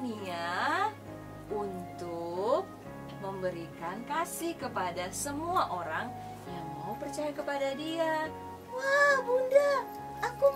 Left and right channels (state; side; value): identical; both; correlation 1.00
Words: untuk memberikan kasih kepada semua orang yang mau percaya kepada Dia. Wah Bunda, aku